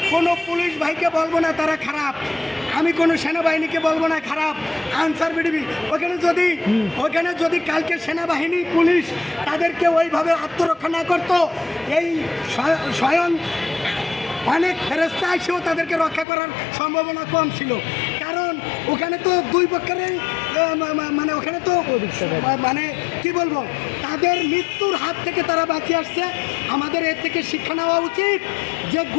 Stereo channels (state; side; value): drops out; right; at 16.2 s